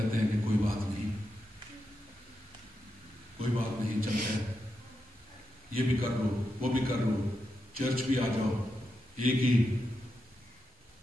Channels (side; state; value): both; normal; correlation 0.86